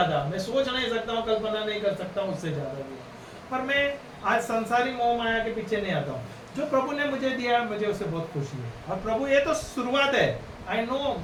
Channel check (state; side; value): identical; both; correlation 1.00